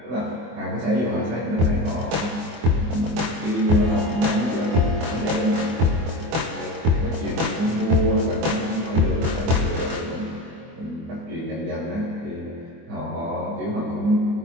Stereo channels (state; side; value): late; left; 24 ms